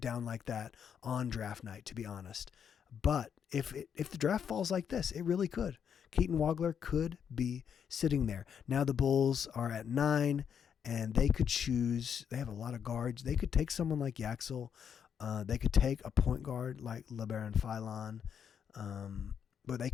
like that on draft night, to be honest. But if the draft falls like this, it really could. Keaton Wagler could be sitting there. Now the Bulls are at 9, and they could choose. They have a lot of guards. They could take someone like Yaxel. They could take a point guard like LeBaron Philon. But they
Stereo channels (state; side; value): quieter; right; 7.8 dB